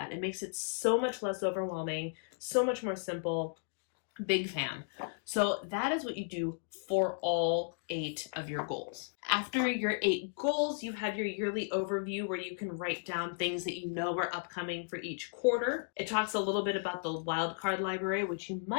It makes it so much less overwhelming, so much more simple. Big fan. So that is what you do for all 8 of your goals. After your 8 goals, you have your yearly overview where you can write down things that you know are upcoming for each quarter. It talks a little bit about the wildcard library, which you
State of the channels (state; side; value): silent; right; digital silence